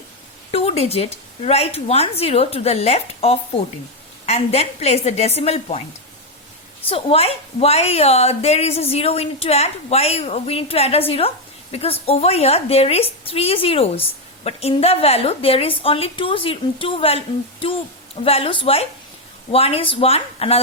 2 digit, write 1 0 to the left of 14 and then place the decimal point. So why there is a 0 we need to add? Why we need to add a 0? Because over here there is 3 zeros, but in the value there is only two values. Why? One is 1,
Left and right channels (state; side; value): normal; both; correlation 0.04